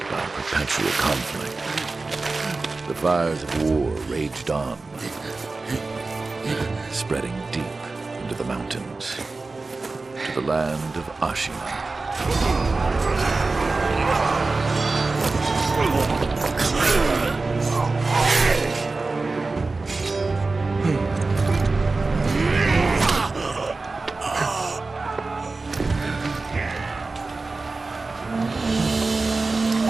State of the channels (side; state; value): left; quieter; 3.6 dB